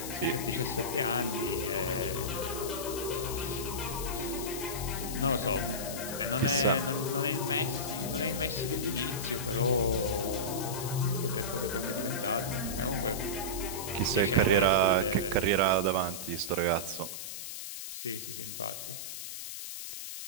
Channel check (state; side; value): noise; left; hiss, 7 dB below the sound